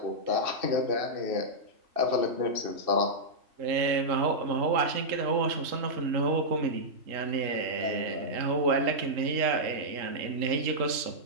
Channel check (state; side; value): late; left; 3.7 ms